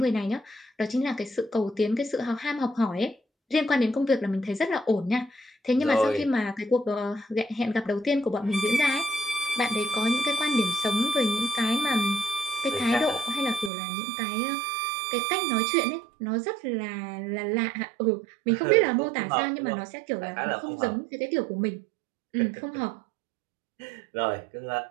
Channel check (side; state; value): left; drops out; at 13.7 s